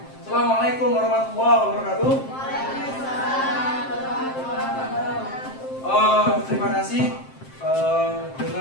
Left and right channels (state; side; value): late; right; 7.6 ms